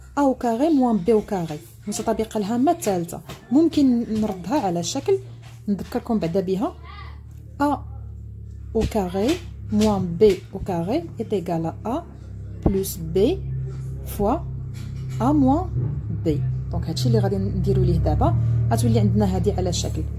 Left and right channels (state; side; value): identical; both; correlation 1.00